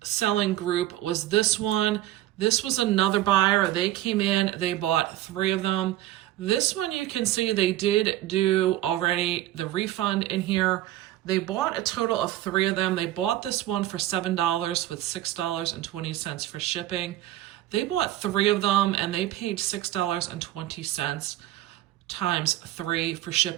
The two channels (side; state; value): left; quieter; 14.4 dB